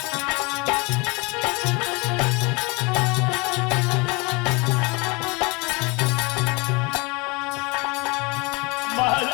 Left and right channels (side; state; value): right; quieter; 27.4 dB